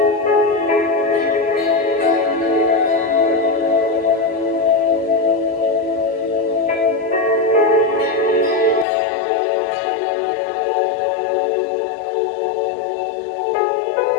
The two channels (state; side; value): drops out; right; at 8.8 s